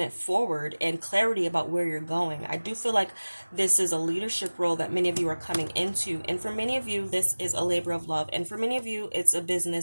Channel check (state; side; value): inverted; both; correlation -1.00